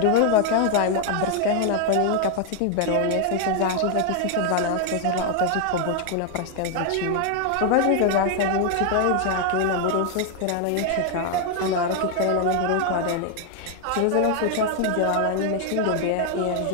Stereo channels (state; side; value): different; both; correlation 0.00